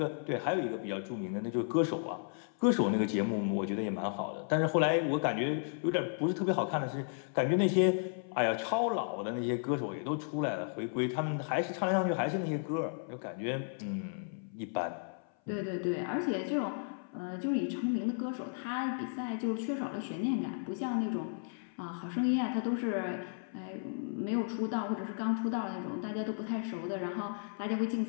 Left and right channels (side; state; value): right; silent; 55 dB below the other